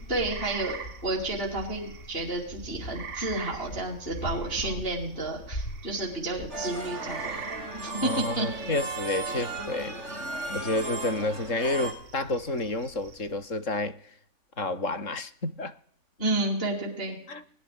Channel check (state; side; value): late; right; 3.5 ms